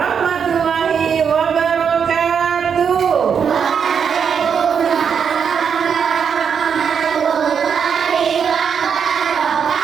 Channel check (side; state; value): left; quieter; 7.0 dB